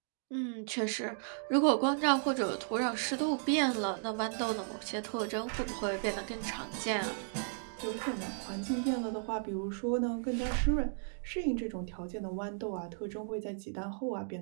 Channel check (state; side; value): silent; left; digital silence